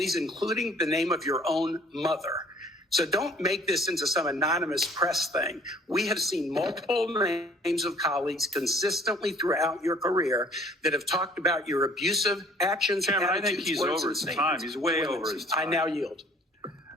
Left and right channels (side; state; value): both; normal; correlation 0.54